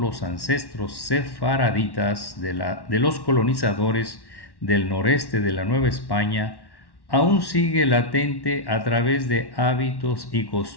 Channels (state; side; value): late; right; 1.1 ms